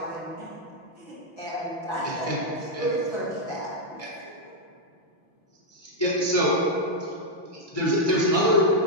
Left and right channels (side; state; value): right; late; 5.9 ms